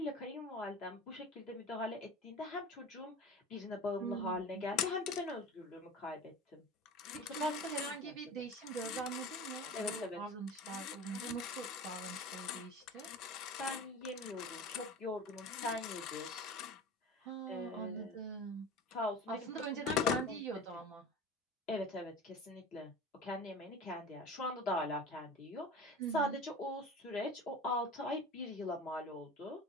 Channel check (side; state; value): both; normal; correlation 0.35